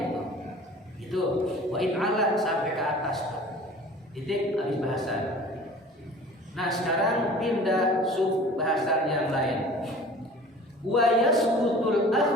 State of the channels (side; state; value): both; normal; correlation 0.44